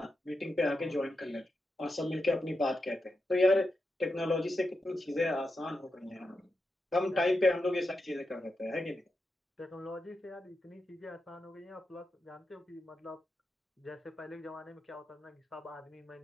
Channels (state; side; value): normal; both; correlation 0.88